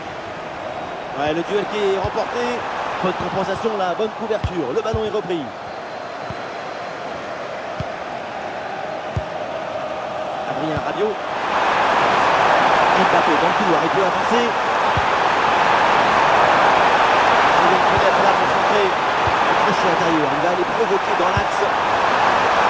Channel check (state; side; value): identical; both; correlation 1.00